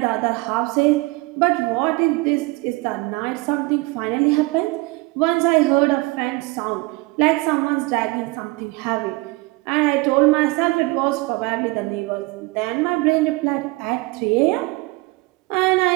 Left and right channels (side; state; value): left; quieter; 24.0 dB